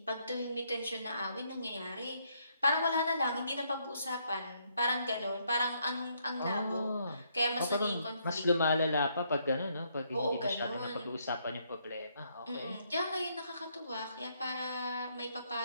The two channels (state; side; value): inverted; both; correlation -0.72